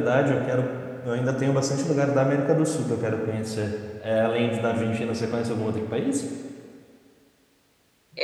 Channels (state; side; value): identical; both; correlation 1.00